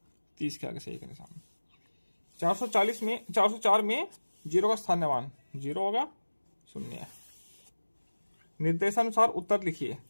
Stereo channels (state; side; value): inverted; both; correlation -1.00